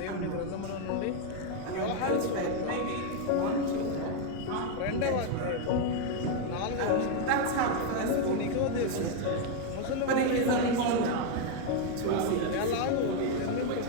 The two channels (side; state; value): both; different; correlation 0.01